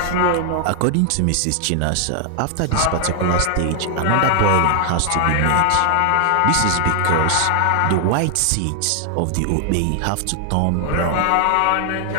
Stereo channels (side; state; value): both; different; correlation 0.00